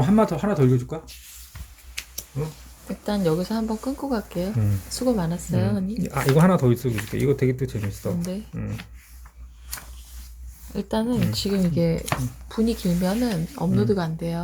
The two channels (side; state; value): both; identical; correlation 1.00